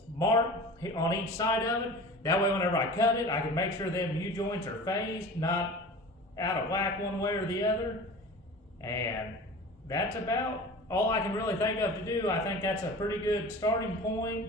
mark on each side of it. That way whenever I cut it, I can make sure them U-joints are phased, not out of whack one way or the other. And that's about all I can really think of to do. I think that's a pretty good starting point,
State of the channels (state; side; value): normal; both; correlation 0.37